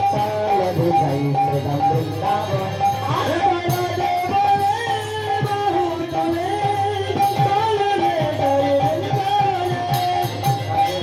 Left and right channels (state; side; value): identical; both; correlation 1.00